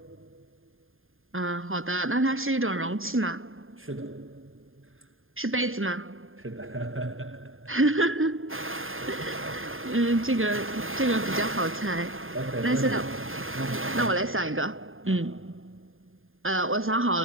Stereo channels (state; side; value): late; left; 0.59 ms